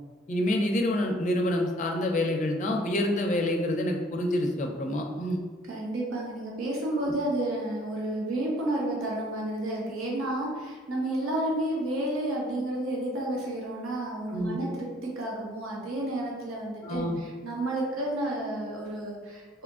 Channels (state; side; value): normal; both; correlation 0.58